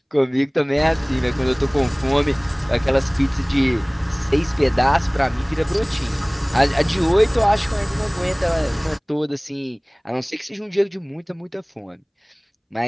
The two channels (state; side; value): identical; both; correlation 1.00